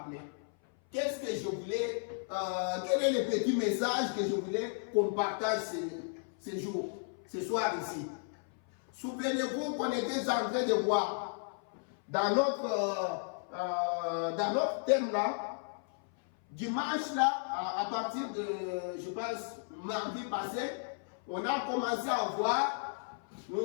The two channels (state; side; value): silent; right; 55 dB below the other